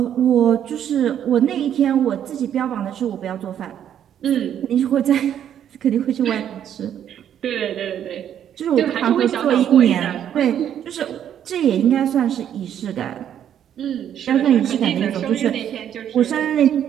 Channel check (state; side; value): quieter; left; 9.8 dB